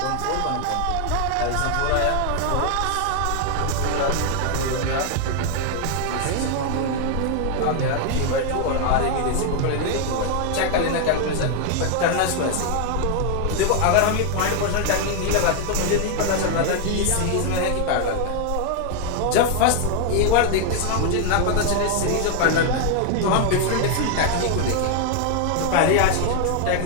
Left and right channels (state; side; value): different; both; correlation 0.01